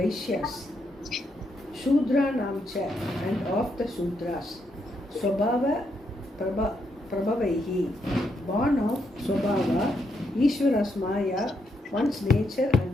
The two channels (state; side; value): normal; both; correlation 0.79